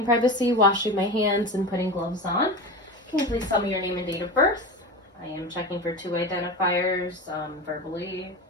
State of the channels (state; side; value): normal; both; correlation 0.26